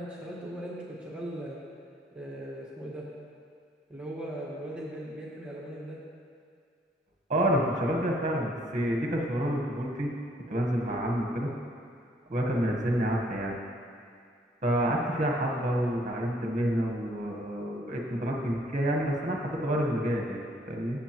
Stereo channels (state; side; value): normal; both; correlation 0.65